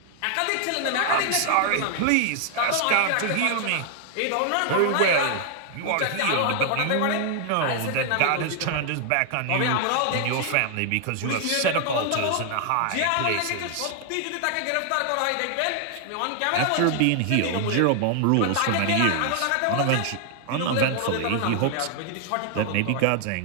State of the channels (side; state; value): both; different; correlation 0.00